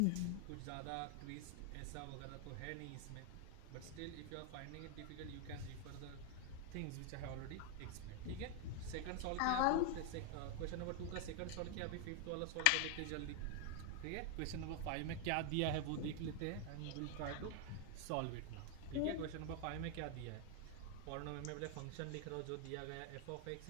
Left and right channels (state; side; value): different; both; correlation 0.00